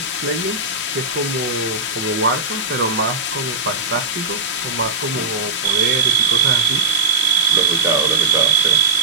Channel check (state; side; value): quieter; left; 3.7 dB